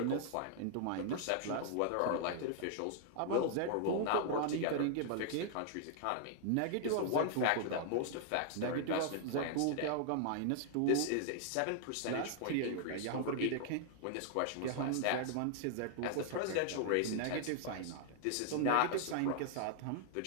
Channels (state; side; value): different; both; correlation 0.00